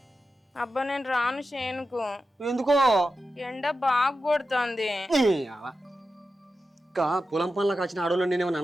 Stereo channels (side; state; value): both; normal; correlation 0.91